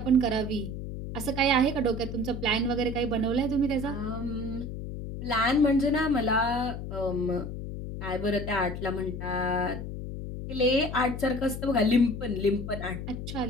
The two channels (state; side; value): noise; left; hum, 7 dB below the sound